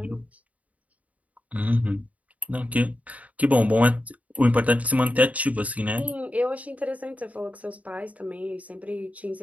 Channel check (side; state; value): left; late; 0.070 ms